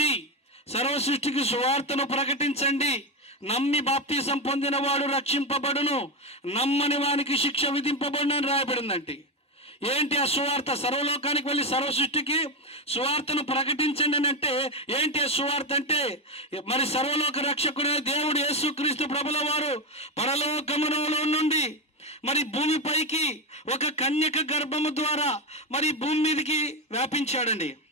సర్వ సృష్టికి సువార్తను ప్రకటించండి, నమ్మి బాప్తీసం పొందిన వాడు రక్షింపబడును, నమ్మని వానికి శిక్ష విధింపబడును అని రాయబడిందండి. ఏంటి ఆ సువార్త? సర్వలోకానికి వెళ్ళి సర్వ సృష్టికి సువార్తను ప్రకటించండి అని అంటే ఏంటి ఆ సువార్త అంటే, మరి సర్వలోక రక్షకుడే దేవుడు యేసుక్రీస్తు ప్రభుల వారు పరలోకములో నుండి మరి భూమిపైకి ఒక కన్యక గర్భము ద్వారా మరి భూమి మీదకి వ్యాపించాడండి.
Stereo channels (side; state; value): both; normal; correlation 0.12